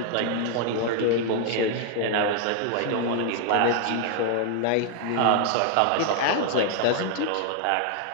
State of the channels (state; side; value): different; both; correlation 0.00